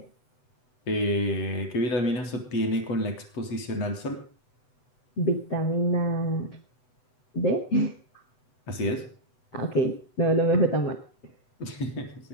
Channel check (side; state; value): right; late; 7.9 ms